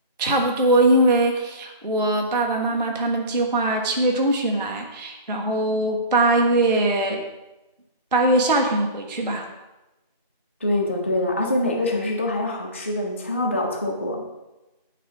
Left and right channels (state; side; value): inverted; both; correlation -0.33